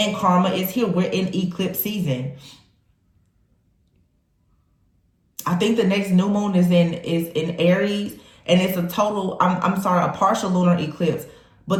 karma is here. We're in eclipse season. I think the next new moon is in Aries, and it's a total, a partial lunar eclipse.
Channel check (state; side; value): identical; both; correlation 1.00